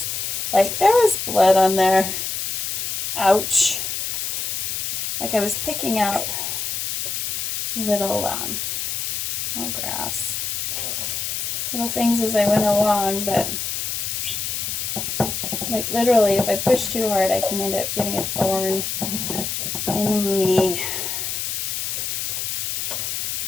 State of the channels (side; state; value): left; noise; hiss, 2 dB below the sound